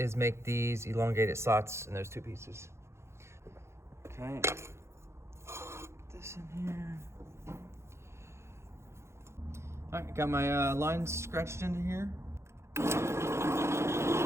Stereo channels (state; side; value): late; left; 0.13 ms